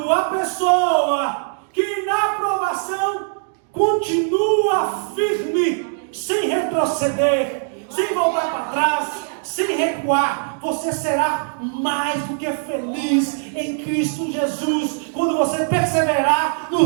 a pessoa que na provação continua firme, sem retroceder, sem voltar para trás, sem recuar. Você será mais do que feliz em Cristo Jesus quando você perseverar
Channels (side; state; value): left; silent; digital silence